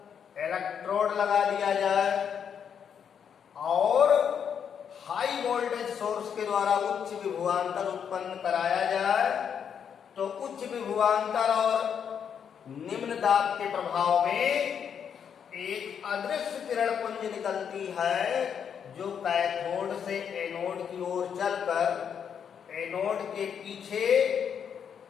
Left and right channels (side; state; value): right; quieter; 7.7 dB